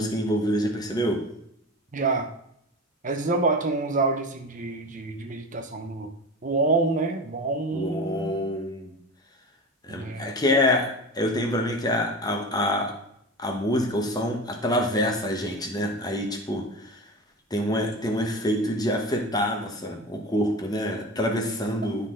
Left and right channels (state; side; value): normal; both; correlation 0.30